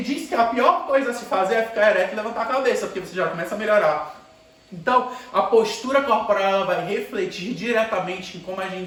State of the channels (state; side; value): identical; both; correlation 1.00